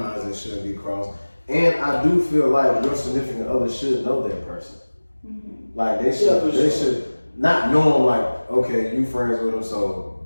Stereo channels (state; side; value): inverted; both; correlation -1.00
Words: that shouldn't be crossed. And I do feel like your significant other should know that person. Mm-hmm. They should, for they sure. should not know him okay, you friends with him,